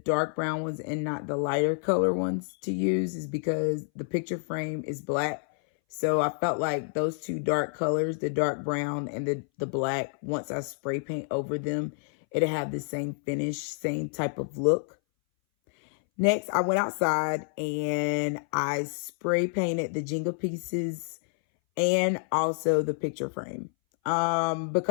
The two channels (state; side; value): silent; right; 59 dB below the other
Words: brown ones and not the lighter color ones to use is because the picture frame is black. So I felt like those two dark colors, the dark brown and the black, once I spray paint over them, it'll have the same finish, same type of look. Next, I went outside and I spray painted the Jenga pieces and also the picture frame.